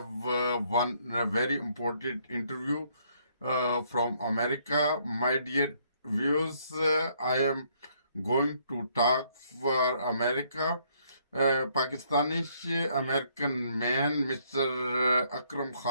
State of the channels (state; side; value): inverted; both; correlation -0.68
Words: one very important interview from America. My dear viewers, I am going to talk for America. Pakistani American man, Mr. Akram